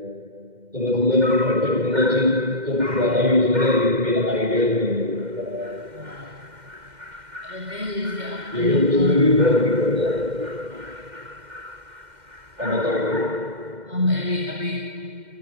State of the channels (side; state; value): left; late; 2.1 ms